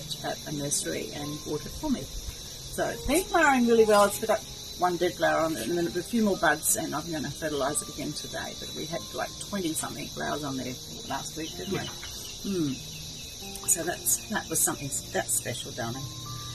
at a nursery and bought it for me. So it's been flowering really well. It's got one dead flower on it and then a few more buds, and I'm going to fertilise it again today. But we had like 20-something flowers on there last week, didn't we? So that was something that's special, darling.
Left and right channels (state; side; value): identical; both; correlation 1.00